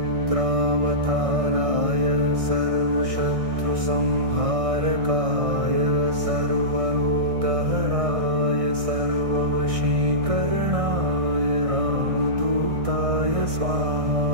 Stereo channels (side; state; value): left; late; 1.6 ms